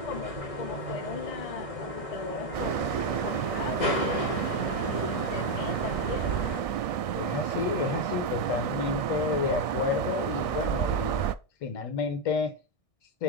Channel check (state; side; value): late; right; 1.6 ms